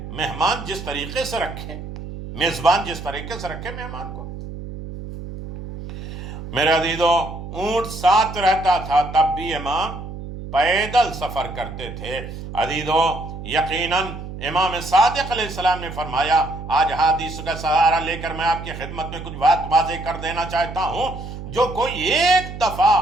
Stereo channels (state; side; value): noise; right; hum, 10 dB below the sound